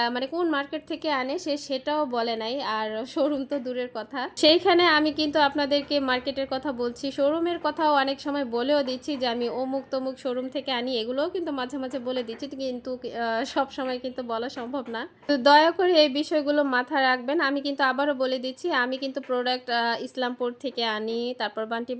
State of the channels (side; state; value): both; identical; correlation 1.00